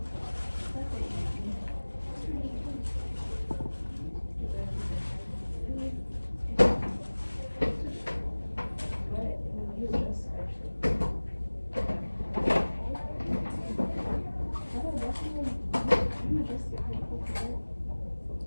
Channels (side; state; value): both; inverted; correlation -1.00